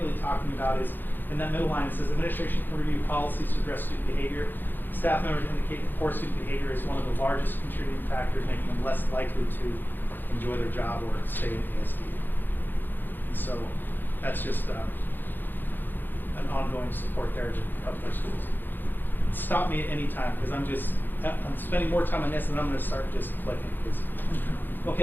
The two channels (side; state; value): right; late; 0.092 ms